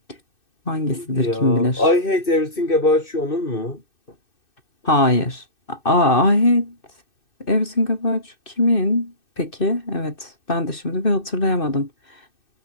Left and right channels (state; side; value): late; right; 2.6 ms